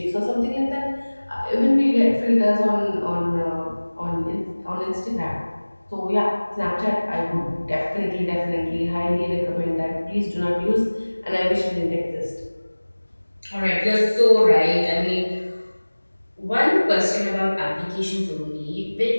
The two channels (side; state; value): both; inverted; correlation -1.00